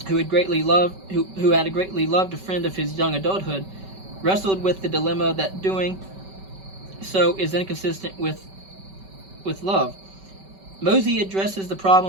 who had greatly loved a friend of his young adulthood, wrestled with the dilemma that doing so is inconsistent with love. Mosey addresses the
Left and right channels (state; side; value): late; left; 5.2 ms